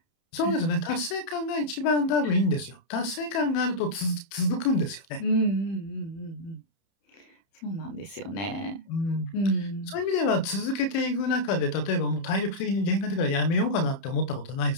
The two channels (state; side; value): late; right; 30 ms